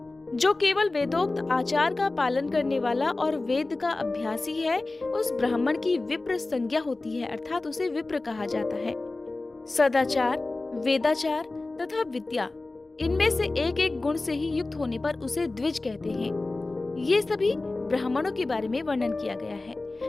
जो केवल वेदोक्त आचार का पालन करने वाला और वेद का अभ्यासी है, उस ब्राह्मण की विप्र संज्ञा होती है, अर्थात उसे विप्र कहा जाता है। सदाचार, वेदाचार तथा विद्या, इनमें से एक एक गुण से ही युक्त होने पर उसे द्विज कहते हैं। ये सभी ब्राह्मणों के बारे में वर्णन किया गया है,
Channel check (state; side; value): quieter; right; 3.2 dB